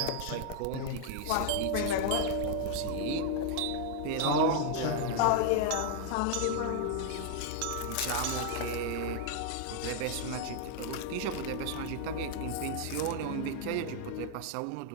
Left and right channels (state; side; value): different; both; correlation 0.00